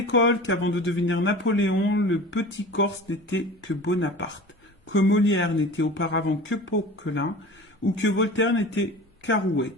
qu'avant de devenir Napoléon, le petit Corse n'était que Bonaparte, que Molière n'était auparavant que Poquelin, ou que Voltaire n'était qu'Arouet.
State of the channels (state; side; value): normal; both; correlation 0.38